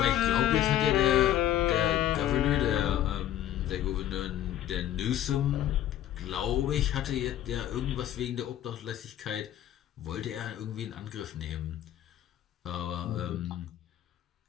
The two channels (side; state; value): right; quieter; 11.8 dB